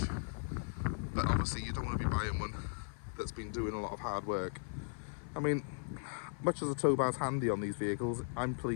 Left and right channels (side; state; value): right; silent; 53 dB below the other